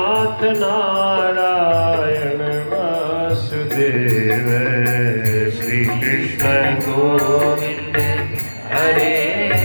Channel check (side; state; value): both; inverted; correlation -1.00